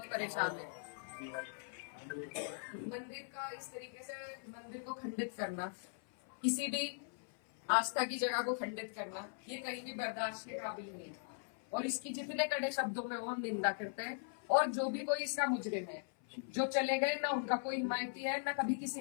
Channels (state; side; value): silent; right; 51 dB below the other